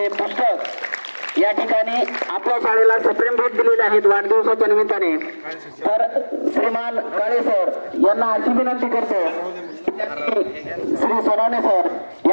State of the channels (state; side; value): inverted; both; correlation -1.00